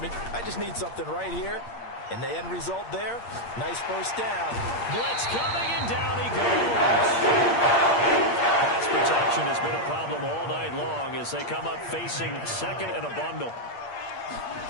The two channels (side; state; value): right; late; 8.6 ms